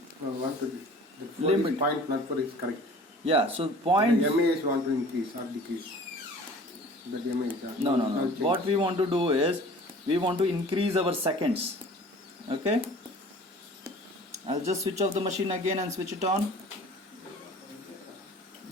What to do? The Limit. point not for is correct. Yeah, so point. The MAS want to increase or decrease. The MAS. No. What we want to do is we want to increase our seconds. Okay. I'll just switch off the machine again and switch it on.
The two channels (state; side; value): normal; both; correlation 0.46